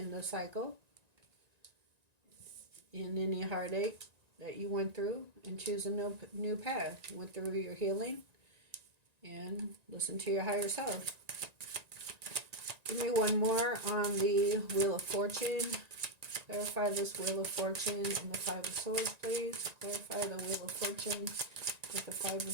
the cycle in any heartache that you went through and choose a new path. You went through your healing and listen to your higher self. Give me one more on the Wheel of Fortune. Clarify this Wheel of Fortune and the Five of Swords, please. Clarify the Wheel of Fortune with the Five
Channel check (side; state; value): left; late; 1.9 ms